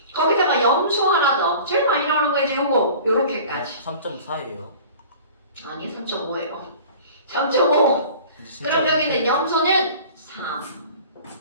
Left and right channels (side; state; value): both; inverted; correlation -0.44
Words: 거기다가 염소 하나 더 제일 많이 나오는 거지 요거 요렇게까지 3.4예요. 아니 3.5예요 3.5 그럼 여기는 염소는